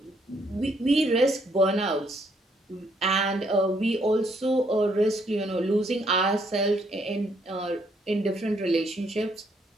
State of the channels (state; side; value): normal; both; correlation 0.71